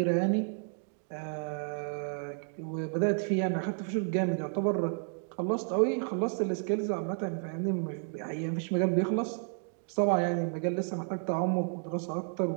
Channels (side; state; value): left; silent; 57 dB below the other